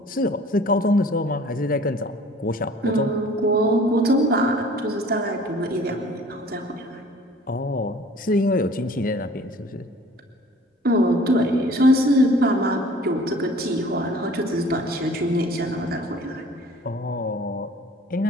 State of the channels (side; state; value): both; normal; correlation 0.50